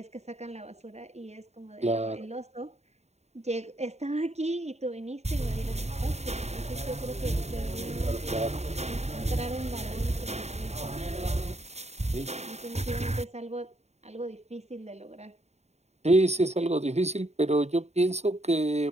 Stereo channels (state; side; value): late; left; 0.32 ms